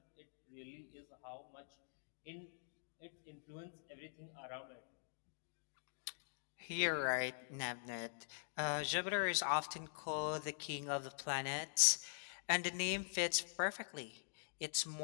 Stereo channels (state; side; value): silent; right; digital silence